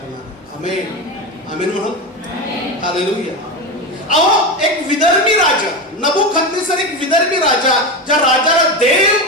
आमेन, आमेन म्हणत, हालेलुया. अहो, एक विदर्भी राजा, नबुकदनेसर एक विदर्भी राजा, ज्या राजाला देव,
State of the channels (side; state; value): both; normal; correlation 0.18